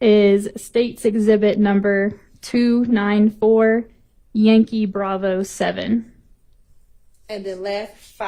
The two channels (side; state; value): both; identical; correlation 1.00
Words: State's Exhibit number 294 Yankee Bravo 7. And then last